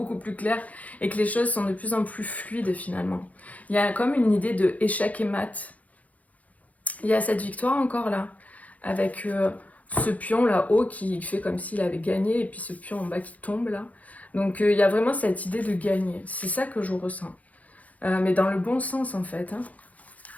plus clair et que les choses sont de plus en plus fluides finalement. Il y a comme une idée de échec et mat. Il y a cette victoire encore là, avec ce pion là-haut qui fait comme s'il avait gagné et puis ce pion en bas qui tombe là. Donc il y a vraiment cette idée de gagner. C'est ça que je ressens. Mais dans le bon sens en fait. Hein.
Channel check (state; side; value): late; right; 0.072 ms